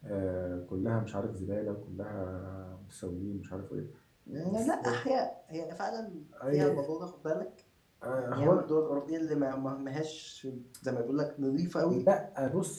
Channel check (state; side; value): identical; both; correlation 1.00